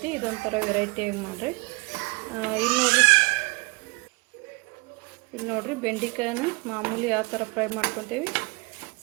ಇದೊಂಥರ ವೆರೈಟಿಯಾಗಿ ಮಾಡಿರಿ. ಇಲ್ಲಿ ನೋಡ್ರಿ ಬೆಂಡೆಕಾಯನ್ನ ಮಾಮೂಲಿ ಯಾವ ಥರ ಫ್ರೈ ಮಾಡ್ಕೊತೀವಿ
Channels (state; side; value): quieter; left; 28.1 dB